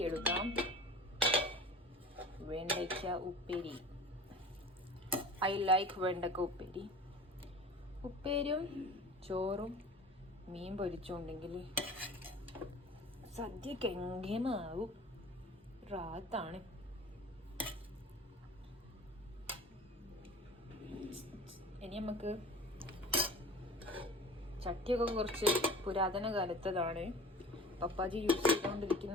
എടുക്കാം. വെണ്ടയ്ക്ക ഉപ്പേരി. ഐ ലൈക്ക് വെണ്ടക്ക ഉപ്പേരി. ഉപ്പേരിയും ചോറും മീൻ പൊരിച്ചുണ്ടെങ്കിൽ സദ്യക്ക് എങ്കേമാവും. റാത്താണ്. ഇനി നമുക്ക് ചട്ടിയൊക്കെ കുറച്ച് പുരാതന കാലത്തതാണ്. പപ്പാജി യൂസ്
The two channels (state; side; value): normal; both; correlation 0.40